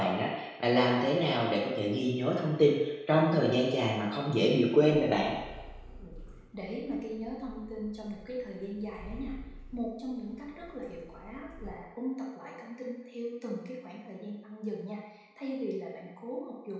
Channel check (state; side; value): identical; both; correlation 1.00